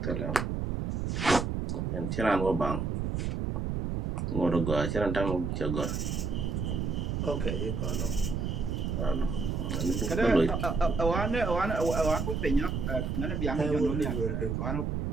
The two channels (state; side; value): noise; right; rumble, 1 dB below the sound